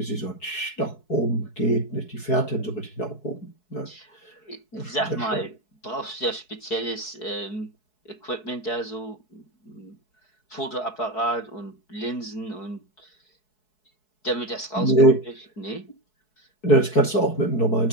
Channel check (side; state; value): right; late; 4.7 ms